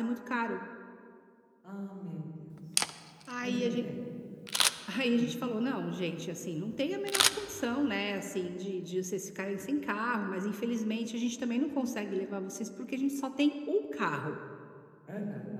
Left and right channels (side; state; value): both; identical; correlation 1.00